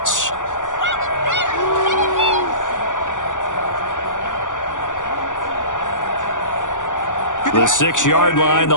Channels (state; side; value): late; right; 0.87 ms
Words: The 6-yard line,